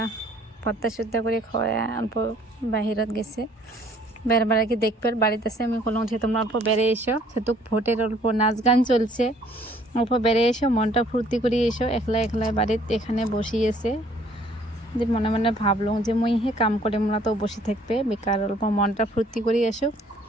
ভর্তা সর্তা করে খাওয়া অল্প বাহিরত গেছে, বেড়াবার কি দেখবে বাড়িতে আছে। আমি বললাম যে তোমরা অল্প বেড়ে এসো, সেটুক ভোটের অল্প নাচ গান চলছে, অল্প বেড়ে এসো, মনটা ফুর্তি করে এসো। একলা একলা বাড়িতে এখানে বসিয়েছে যে মনে মনে ভাবলাম যে মুই হে কাম করে মোরা তো বসে থাকবে বেকার, অল্প মনটা ফুর্তি করে এসো।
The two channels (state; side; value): normal; both; correlation 0.59